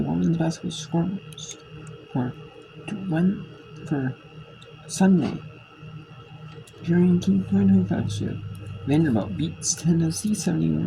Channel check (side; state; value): both; identical; correlation 1.00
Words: women's basketball scores for Sunday. During King 2025 shift, Vanderbilt beats Tennessee